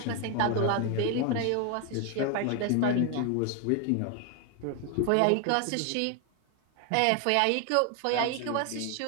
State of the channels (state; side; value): different; both; correlation 0.01